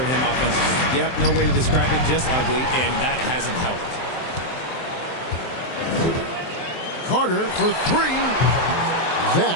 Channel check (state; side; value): late; right; 23 ms